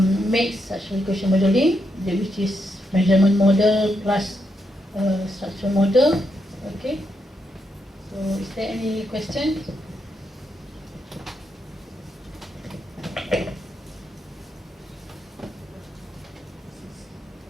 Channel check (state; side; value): normal; both; correlation 0.81